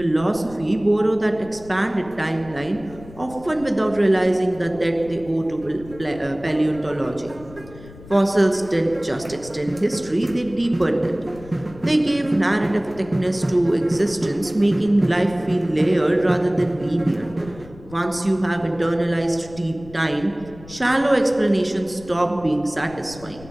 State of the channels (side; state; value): left; noise; rumble, 19 dB below the sound